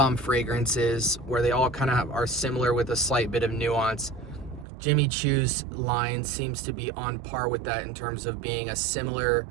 fragrances, where they all kind of are similar with a slight bit of nuance. Jimmy Choo's line seems to be on par with that in terms of being a similar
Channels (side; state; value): left; drops out; at 4.7 s